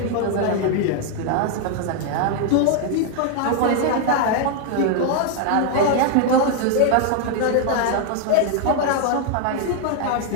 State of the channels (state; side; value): different; both; correlation 0.00